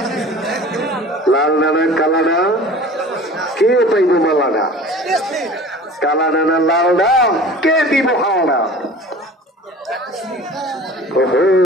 লাল নানা কালানা কে পাইব মালানা কালা নানা লাল না কে দিব হাওড়া ওহো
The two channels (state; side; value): normal; both; correlation 0.42